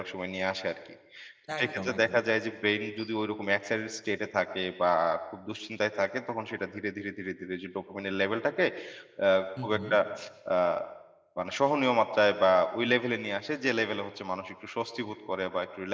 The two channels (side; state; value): both; identical; correlation 1.00